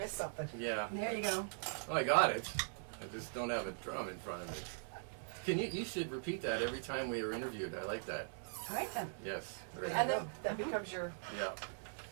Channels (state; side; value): silent; left; digital silence